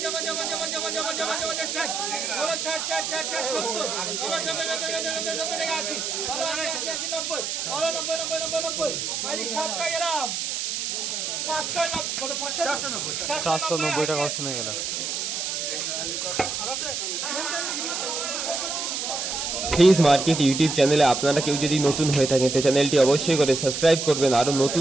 50 50 60 বলো 60 60 60 70 বলো 70 টাকা 80 বলো 80 80 90 বলো 90 90 90 90 মানে 700 গ্রাম 590 কত 490 টাকা অপশন হয়ে গেল। ফিজ মার্কেট ইউটিউব চ্যানেলে আপনারা কেউ যদি নতুন হয়ে থাকেন তো চ্যানেলটি অবশ্যই করে সাবস্ক্রাইব করবেন আরো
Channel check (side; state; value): right; noise; hiss, 3 dB below the sound